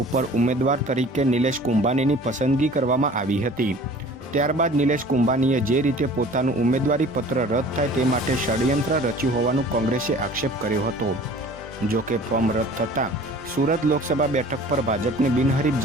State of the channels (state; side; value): normal; both; correlation 0.46